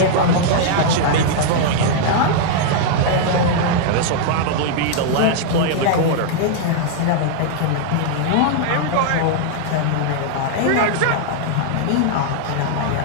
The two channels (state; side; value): different; both; correlation -0.01